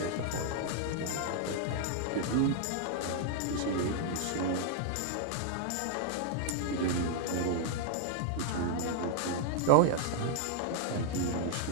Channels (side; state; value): both; different; correlation 0.00